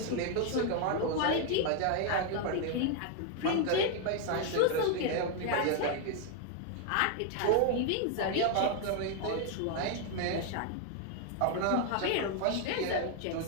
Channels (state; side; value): different; both; correlation 0.00